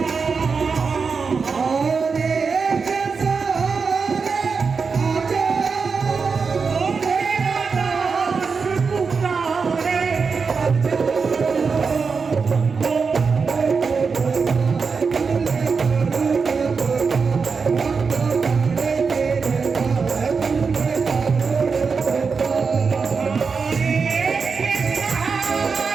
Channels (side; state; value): left; quieter; 5.2 dB